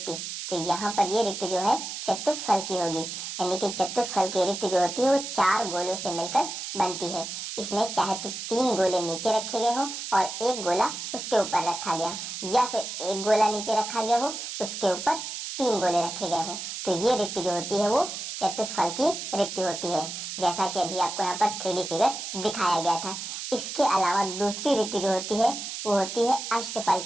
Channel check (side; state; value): right; noise; hiss, 6 dB below the sound